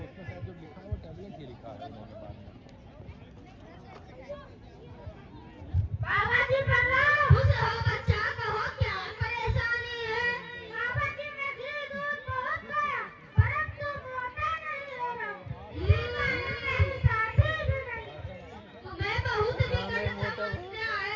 बाबा जी प्रणाम। खुश रहो बच्चा, कहो क्या परेशानी है? बाबा जी मैं घी दूध बहुत खाया, परंतु मोटा नहीं हो रहा। मेरी शादी भी नहीं। तुम्हें बहुत विकट समस्या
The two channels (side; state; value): both; identical; correlation 1.00